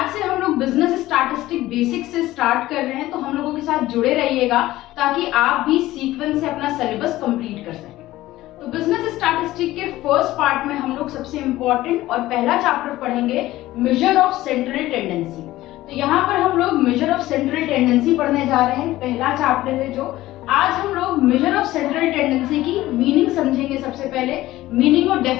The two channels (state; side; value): quieter; right; 16.3 dB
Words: से हम लोग बिजनेस स्टैटिस्टिक बेसिक से स्टार्ट कर रहे हैं, तो हम लोगों के साथ जुड़े रहिएगा ताकि आप भी सीक्वेंस से अपना सिलेबस कंप्लीट कर सकें। तो बिजनेस स्टैटिस्टिक के फर्स्ट पार्ट में हम लोग सबसे इंपॉर्टेंट और पहला चैप्टर पढ़ेंगे मेजर ऑफ सेंट्रल टेंडेंसी। तो यहाँ पर हम लोग मेजर ऑफ सेंट्रल टेंडेंसी पढ़ने जा रहे हैं, पहला चैप्टर है जो आज हम लोग मेजर ऑफ सेंट्रल टेंडेंसी की मीनिंग समझेंगे। सबसे पहले मीनिंग और